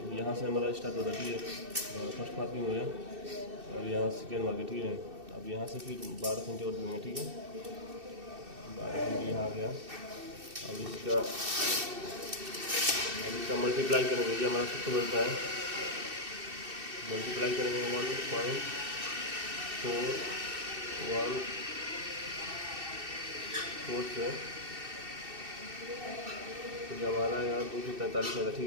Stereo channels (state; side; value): late; left; 2.6 ms